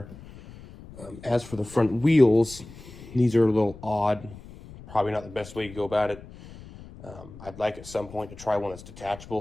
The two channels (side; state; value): left; noise; rumble, 17 dB below the sound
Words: As for the front wheels, these are a little odd. Probably not the best way to go about it. I'd like at some point to try one that's